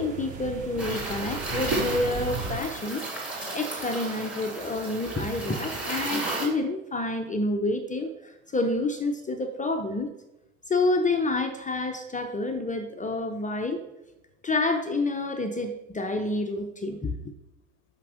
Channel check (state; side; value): normal; both; correlation 0.38